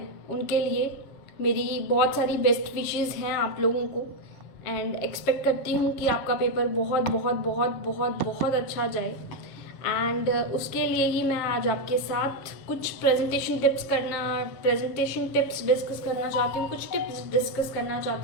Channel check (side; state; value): right; late; 7.4 ms